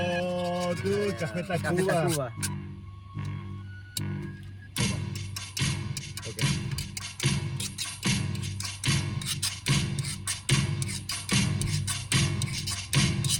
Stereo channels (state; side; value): identical; both; correlation 1.00